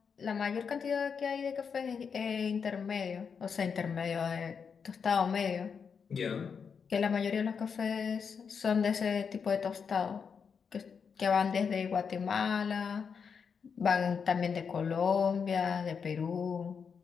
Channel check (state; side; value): quieter; right; 6.2 dB